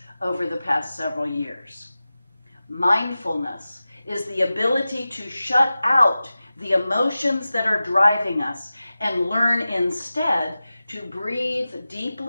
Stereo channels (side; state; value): both; inverted; correlation -0.95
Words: over the past several years. Mindfulness is the ability to shut out the emotions that are driving us and learn instead to breathe